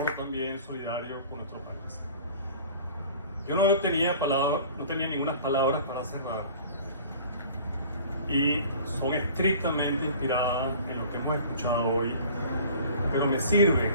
también solidario con nuestro país. Yo no tenía ninguna palabras para cerrar, y son estrictamente inspiradas en lo que hemos escuchado hoy, pero me sirven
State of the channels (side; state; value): both; inverted; correlation -0.46